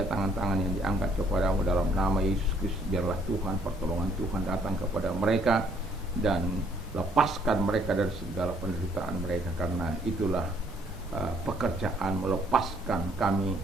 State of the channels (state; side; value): normal; both; correlation 0.65